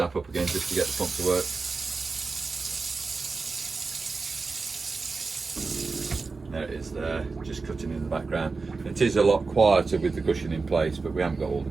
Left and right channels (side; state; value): left; quieter; 4.2 dB